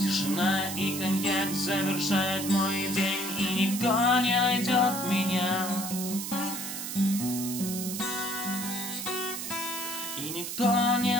и коньяк завершает мой день. И никто не найдет меня. И никто не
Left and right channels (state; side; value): noise; right; hiss, 5 dB below the sound